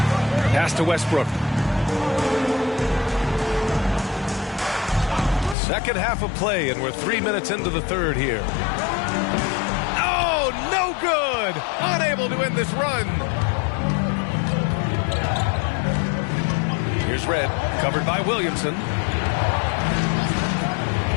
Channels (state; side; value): drops out; right; at 5.6 s